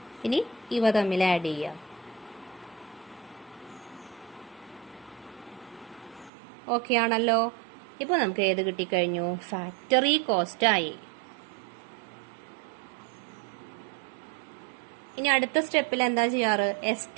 ഇനി ഇവ തമ്മിൽ ആഡ് ചെയ്യുക. ഓക്കെ ആണല്ലോ. ഇപ്പൊ നമുക്ക് ഏത് കിട്ടിക്കഴിഞ്ഞു? ഫാക്ടറി കോസ്റ്റ് ആയി. ഇനി അടുത്ത സ്റ്റെപ്പിൽ എന്താ ചെയ്യാറ്?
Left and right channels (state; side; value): drops out; left; at 6.3 s